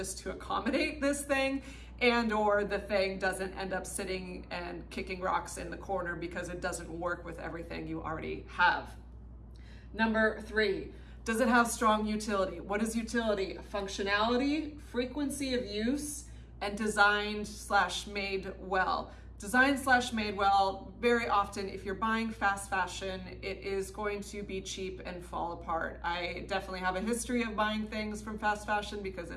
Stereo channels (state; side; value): identical; both; correlation 1.00